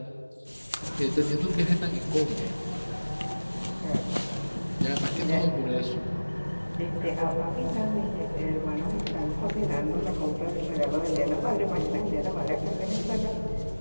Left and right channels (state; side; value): inverted; both; correlation -1.00